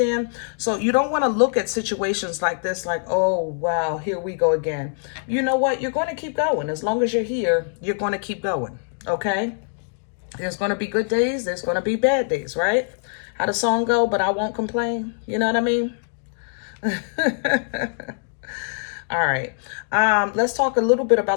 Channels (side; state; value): right; silent; digital silence